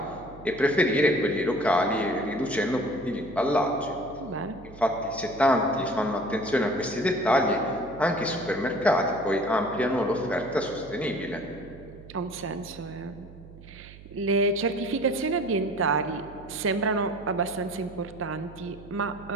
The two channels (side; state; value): right; noise; hum, 18 dB below the sound